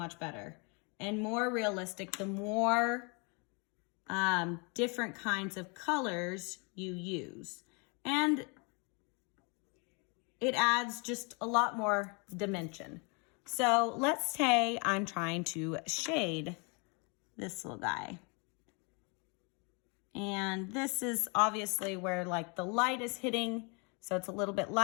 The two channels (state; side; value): quieter; right; 32.6 dB